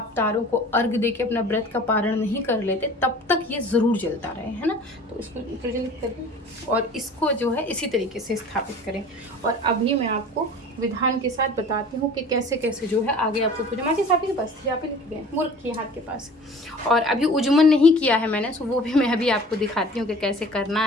तारों को अर्घ दे के अपना व्रत का पारण नहीं कर लेते, तब तक ये ज़रूर जलता रहे, है ना। तो इसको प्रज्वलित करें और इसको जो है इसी तरीके से स्थापित करें। और अभी मैं आपको विधान के साथ बताती हूँ कि कैसे कैसे जो है आगे आपको पूजा। माँ जी आपके पास थी, यहाँ पे लिख गए मूर्ख की हाथ के पास। और अभी उज्जमन नहीं किया है मैंने, सो वो भी मैं अभी आपको दिखाती हूँ कि कैसे करना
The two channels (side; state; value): both; normal; correlation 0.44